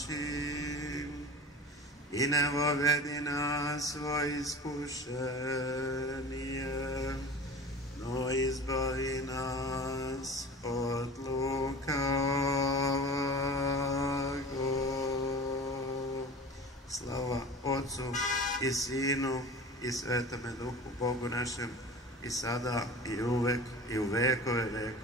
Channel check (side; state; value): both; normal; correlation 0.37